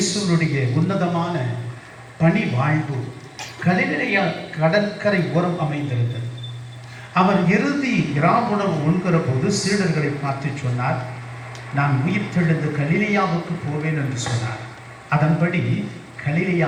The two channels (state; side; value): identical; both; correlation 1.00